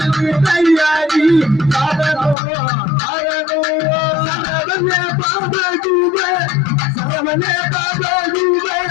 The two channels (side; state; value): right; drops out; at 2.4 s